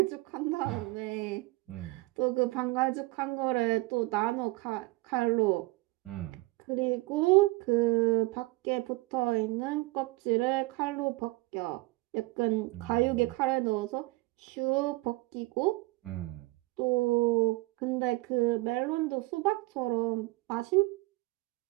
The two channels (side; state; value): left; quieter; 23.2 dB